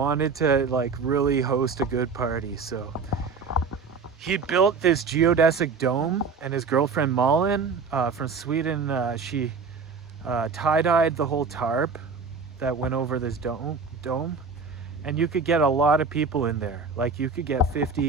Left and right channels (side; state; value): left; quieter; 4.9 dB